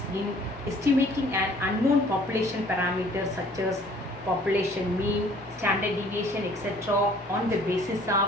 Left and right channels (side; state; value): both; normal; correlation 0.55